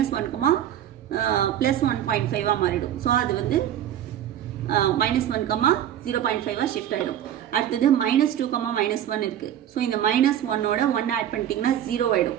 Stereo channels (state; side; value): quieter; left; 10.8 dB